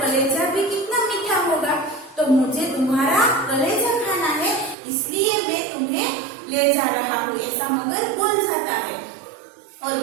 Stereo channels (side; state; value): left; drops out; at 4.8 s